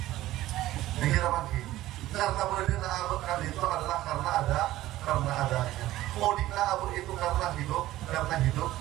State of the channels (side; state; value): left; quieter; 15.5 dB